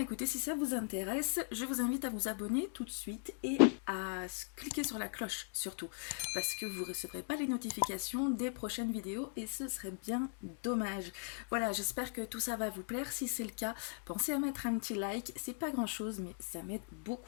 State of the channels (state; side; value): silent; right; 52 dB below the other